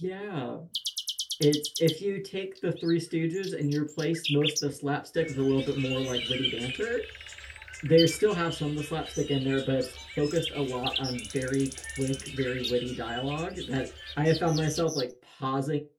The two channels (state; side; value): identical; both; correlation 1.00